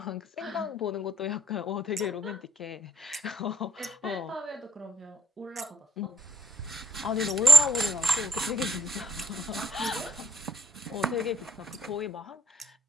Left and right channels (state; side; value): normal; both; correlation 0.68